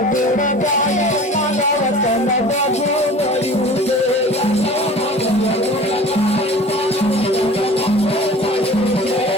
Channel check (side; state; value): both; normal; correlation 0.41